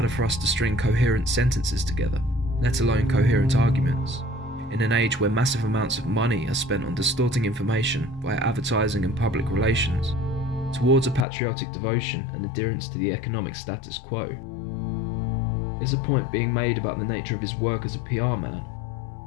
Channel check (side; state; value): right; drops out; at 11.2 s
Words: for us to string coherent sentences together, let alone coherent arguments, in an age where massive amounts of money are spent on distorting information via advertising and public relations, towards a patriotic devotion and adherence to the economic status quo? Is a point being made about the nature of his work as a PR man?